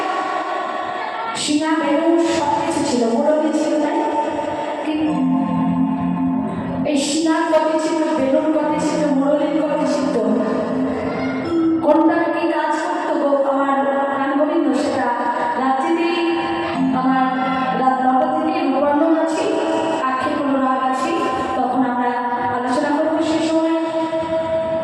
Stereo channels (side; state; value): both; identical; correlation 1.00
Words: সিংহা বেরো সব কিছু ছিল, মুরলি ছিল, তাই কিন্তু এই সিংহার গতি ছিল, বেলুর গতি ছিল, মুরলির গতি ছিল, কোনটা কি কাজ করতো গো আমার গান গোবিন্দ সেটা রাত্রিতেই আমার রাত 9টা থেকে নবান্ন আছি, আখের কোনো রাগ আছি, তখন আমরা আলোচনা করবো সে সময়।